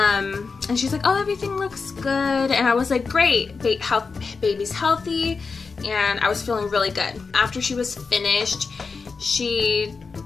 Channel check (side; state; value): right; quieter; 4.7 dB